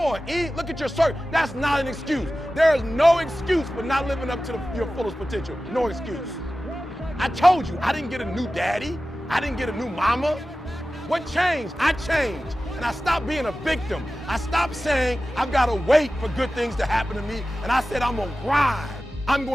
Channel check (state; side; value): normal; both; correlation 0.95